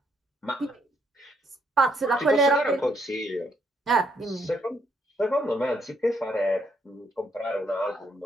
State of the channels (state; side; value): normal; both; correlation 0.72